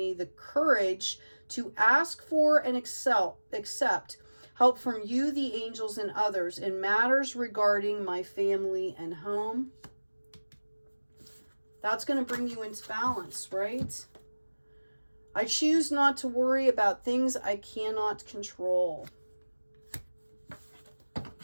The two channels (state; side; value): inverted; both; correlation -1.00